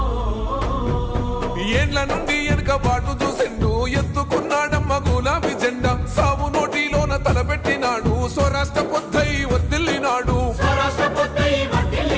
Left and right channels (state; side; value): identical; both; correlation 1.00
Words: ఏండ్ల నుండి వెనుకబాటు చూసిండు ఎత్తుకున్నాడమ్మ గులాబీ జెండా సావు నోటిలోన తలపెట్టినాడు స్వరాష్ట్ర